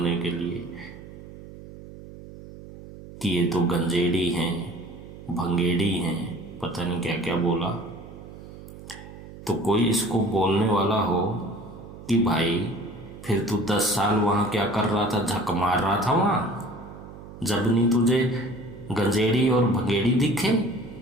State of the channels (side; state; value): right; noise; hum, 16 dB below the sound